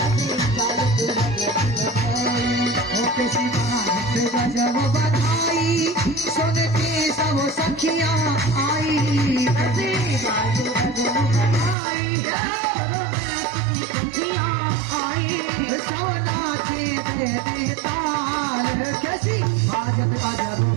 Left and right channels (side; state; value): left; drops out; at 11.8 s